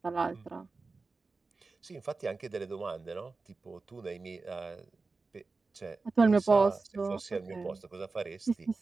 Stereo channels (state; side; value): quieter; left; 3.9 dB